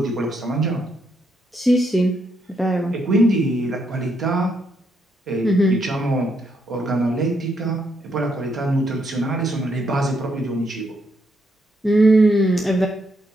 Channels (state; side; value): normal; both; correlation 0.77